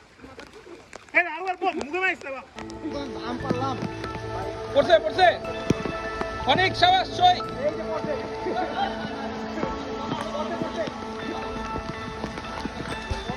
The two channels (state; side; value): identical; both; correlation 1.00